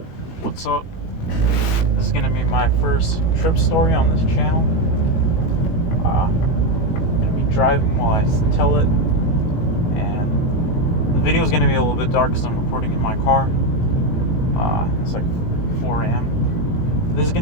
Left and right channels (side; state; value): right; late; 18 ms